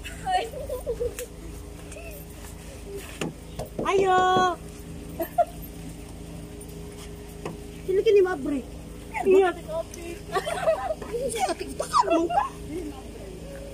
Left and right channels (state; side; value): identical; both; correlation 1.00